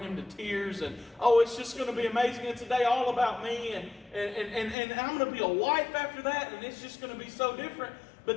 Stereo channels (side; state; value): right; drops out; at 4.8 s